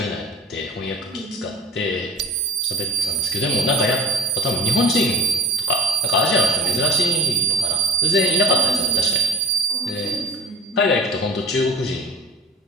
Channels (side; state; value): both; normal; correlation 0.42